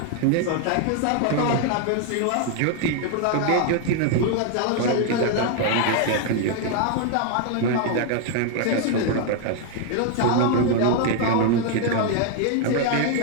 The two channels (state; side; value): different; both; correlation 0.00